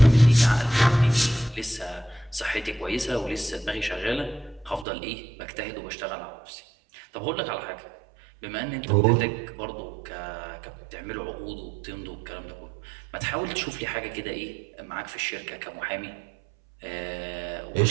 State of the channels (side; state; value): left; drops out; at 4.9 s